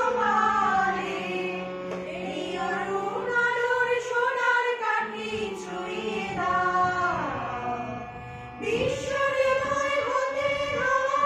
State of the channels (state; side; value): identical; both; correlation 1.00